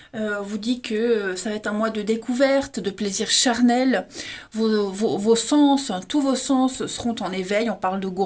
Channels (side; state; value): both; identical; correlation 1.00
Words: vous dit que ça va être un mois de découverte, de plaisir charnel. Vos sens, tous vos sens seront en éveil. On parle de